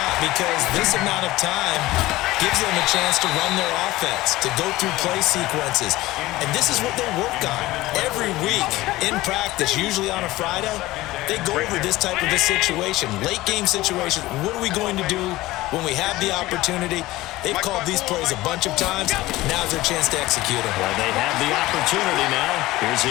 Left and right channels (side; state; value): right; quieter; 18.1 dB